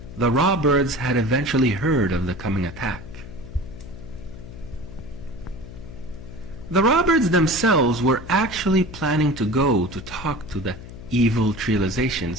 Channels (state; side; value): noise; left; hum, 14 dB below the sound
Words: the Rawbirds had eventually heard of the coming attack. The Rawbirds themselves were actually planning to go to talk to the evil